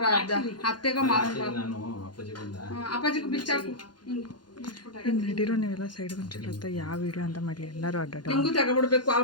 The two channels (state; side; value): late; right; 0.71 ms